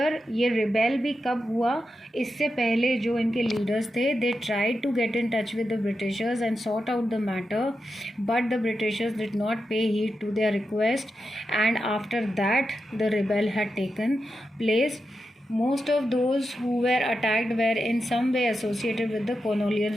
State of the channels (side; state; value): both; normal; correlation 0.88